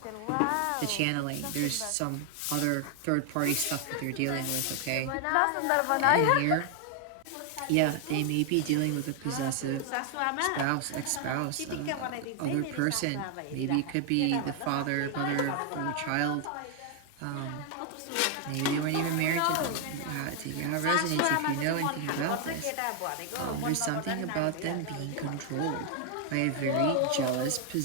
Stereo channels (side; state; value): both; different; correlation 0.00